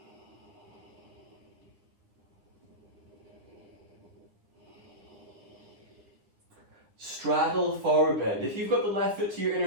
Straddle forward bend. If you've got the left foot to your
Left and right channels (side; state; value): left; late; 9.9 ms